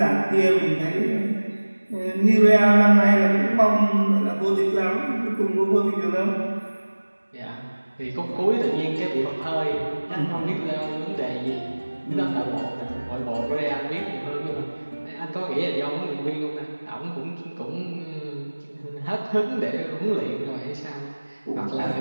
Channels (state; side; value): inverted; both; correlation -1.00